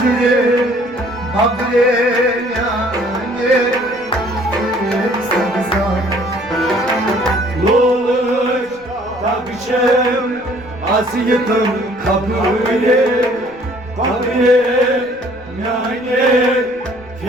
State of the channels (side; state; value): left; noise; rumble, 27 dB below the sound